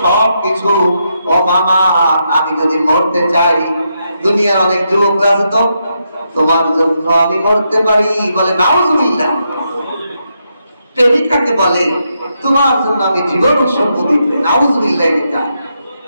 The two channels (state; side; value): inverted; both; correlation -0.81